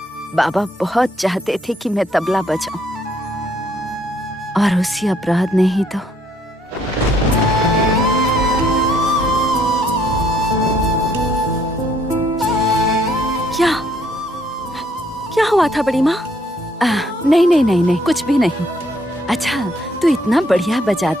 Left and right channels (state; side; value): normal; both; correlation 0.67